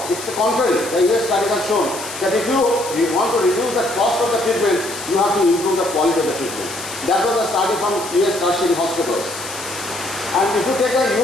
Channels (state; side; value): noise; left; hiss, 11 dB below the sound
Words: It's the contrary. The US studies have shown that if you want to reduce the cost of the treatment, you have to improve the quality of the treatment. That was a study from US tertiary hospitals. And if you take a